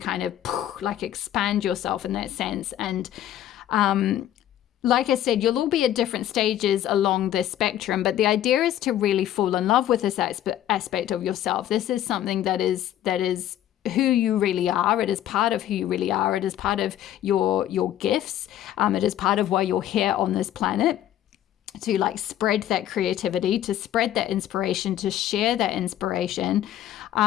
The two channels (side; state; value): right; quieter; 11.9 dB